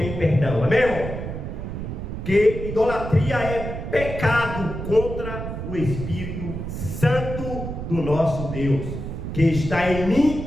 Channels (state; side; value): noise; right; rumble, 6 dB below the sound